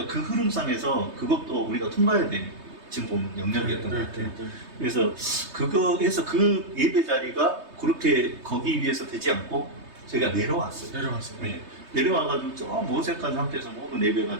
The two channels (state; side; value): late; left; 3.2 ms